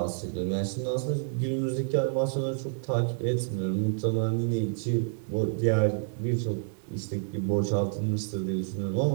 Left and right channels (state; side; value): silent; left; 59 dB below the other